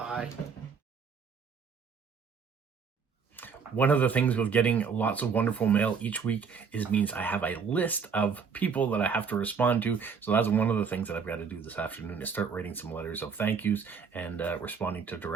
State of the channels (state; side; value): quieter; left; 6.1 dB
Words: One of the things with getting lots of wonderful mail each week means I have a list of people that I have to respond to. So that's one of the things that I've got to do this afternoon, is start writing some letters of thank yous and responding to